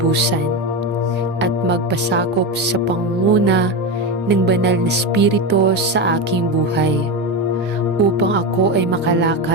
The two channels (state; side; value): normal; both; correlation 0.16